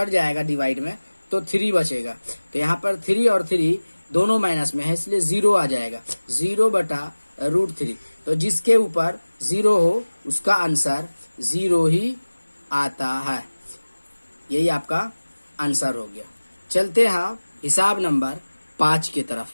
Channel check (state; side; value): inverted; both; correlation -1.00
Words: जाएगा डिवाइड में तो 3 बचेगा। तो यहाँ पर 3 और 3 दोनों माइनस में है इसलिए 0 आ जाएगा, 0/√3। तो जिसके ऊपर 0 हो उसका आंसर 0 ही आता है। यही आपका आंसर हो गया। चलते हैं हिसाब नंबर 5 की